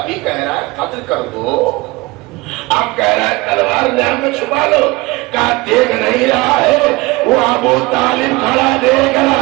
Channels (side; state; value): left; quieter; 22.4 dB